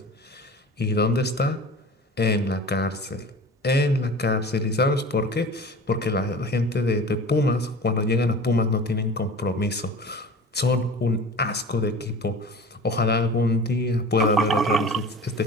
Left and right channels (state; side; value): normal; both; correlation 0.38